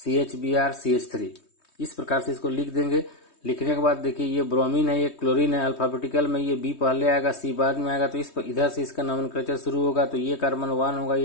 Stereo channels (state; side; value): late; right; 3.2 ms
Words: CH3, इस प्रकार से इसको लिख देंगे। लिखने के बाद देखिए ये ब्रोमीन है, ये क्लोरीन है, अल्फाबेटिकल में ये बी पहले आएगा, सी बाद में आएगा, तो इस इधर से इसका नोमेनक्लेचर शुरू होगा। तो ये कार्बन 1 होगा,